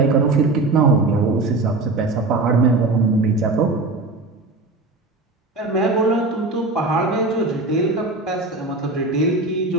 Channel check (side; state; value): left; quieter; 3.2 dB